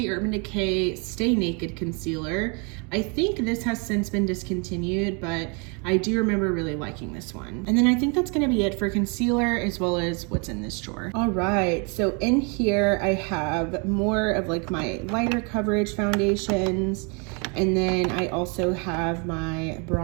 Urban Decay Stay Naked Concealer. I think this has since been discontinued, but I do remember really liking this one. And then I think that's gonna be it for concealer as well as what's in this drawer. All right, so in here I have more of like my lighter coverage foundations, and then I also have my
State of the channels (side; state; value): left; quieter; 34.1 dB